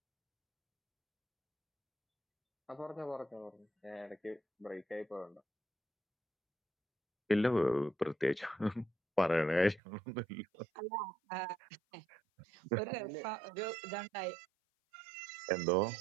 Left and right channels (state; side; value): drops out; left; at 9.8 s